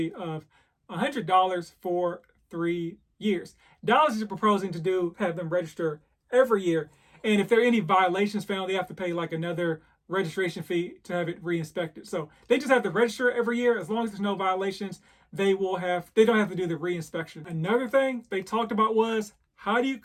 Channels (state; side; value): identical; both; correlation 1.00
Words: of $100 for 3 years. Dallas is proposing to have them register every year. And if there are any violations found, they have to pay like another registration fee to have it re-inspected. So they just have to register every year. As long as there's no violations, they don't have to do the re-inspection. Another thing they talked about was, how do you